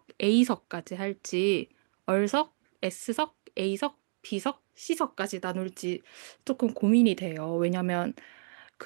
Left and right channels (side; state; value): left; silent; digital silence